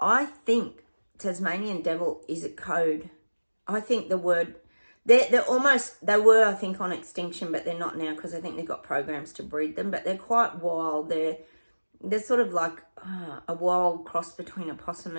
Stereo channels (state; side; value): inverted; both; correlation -1.00